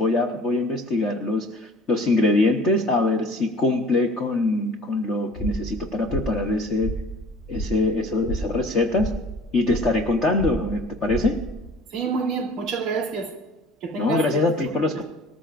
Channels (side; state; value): both; normal; correlation 0.48